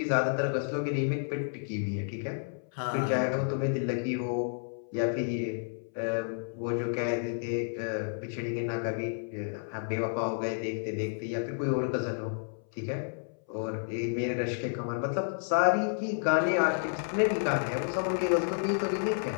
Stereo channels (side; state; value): right; silent; 57 dB below the other